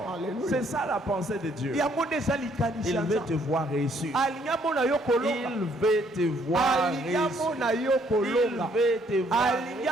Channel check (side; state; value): both; normal; correlation 0.66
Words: C'est ça la pensée de Dieu. Il veut te voir réussir. Il veut te voir réussir.